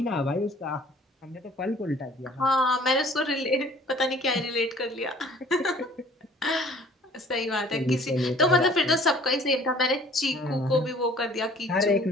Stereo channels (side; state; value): both; normal; correlation 0.52